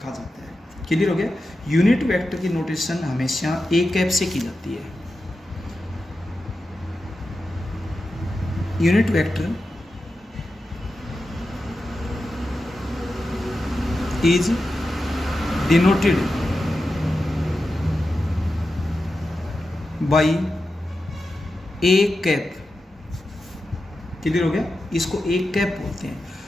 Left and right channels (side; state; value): both; normal; correlation 0.91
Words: कहा जाता है। क्लियर हो गया? यूनिट वेक्टर की नोटेशन हमेशा ए कैप से की जाती है। Unit vector is denoted by A cap. Clear हो गया? इसको ए कैप बोलते हैं।